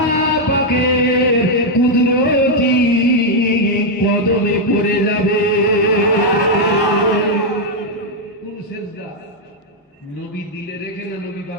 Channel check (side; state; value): both; normal; correlation -0.01